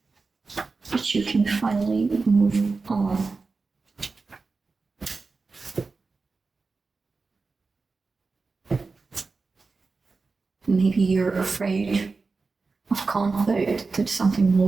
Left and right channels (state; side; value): quieter; left; 4.1 dB